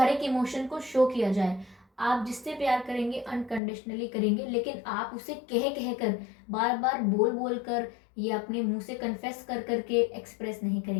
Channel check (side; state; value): right; drops out; at 3.6 s